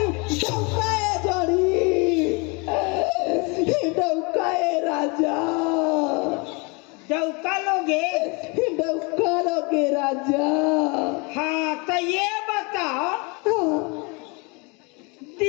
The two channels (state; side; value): quieter; right; 30.0 dB